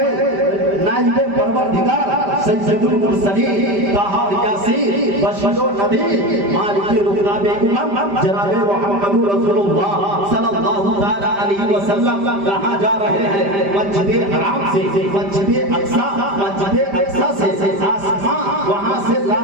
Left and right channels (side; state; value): left; late; 5.0 ms